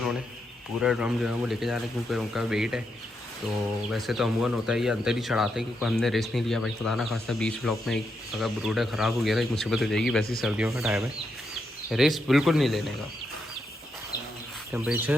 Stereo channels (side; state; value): both; normal; correlation 0.82